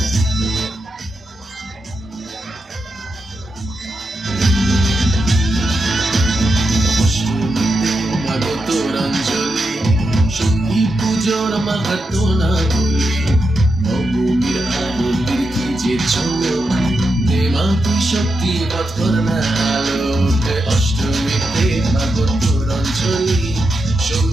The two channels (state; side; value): normal; both; correlation 0.86